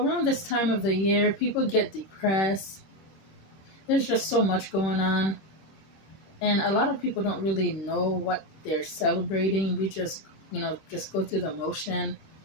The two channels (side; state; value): right; late; 26 ms